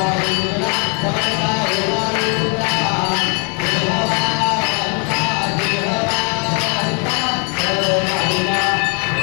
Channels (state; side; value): quieter; right; 36.5 dB